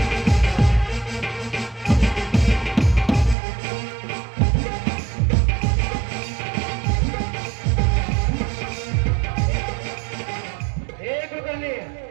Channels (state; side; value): drops out; left; at 3.4 s